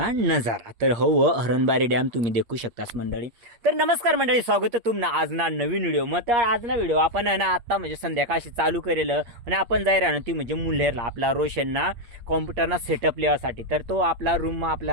नजारा तर हो हरणबारी डॅम तुम्ही देखू शकतास मंडळी. तर नमस्कार मंडळी, स्वागत आहे तुमना आज ना नवीन व्हिडिओ. मग तर आज ना व्हिडिओ आपण ना आता म्हणजे संध्याकाळशी चालू करेलं आणि आपण जाय राहणं ती म्हणजे मुल्हेरला आपला रोशनना कॉम्प्युटरना सेटअप लिहासाठी. तर तो आपला रूम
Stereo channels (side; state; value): left; late; 8.6 ms